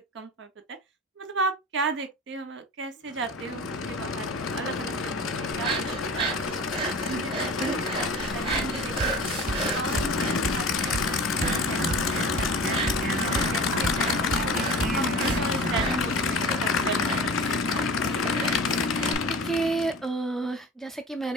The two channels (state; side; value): normal; both; correlation 0.37